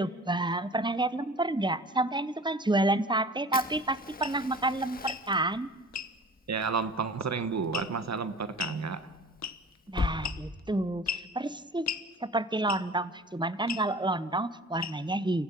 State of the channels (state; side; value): normal; both; correlation 0.42